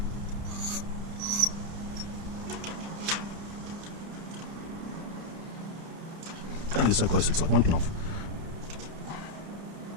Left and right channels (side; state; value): left; late; 30 ms